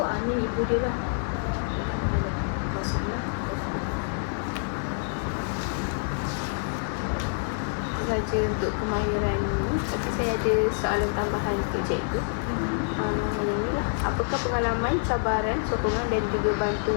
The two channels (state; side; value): silent; right; 56 dB below the other